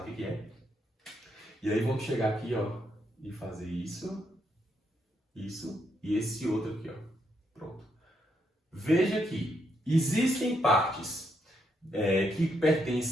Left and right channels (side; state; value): both; normal; correlation 0.78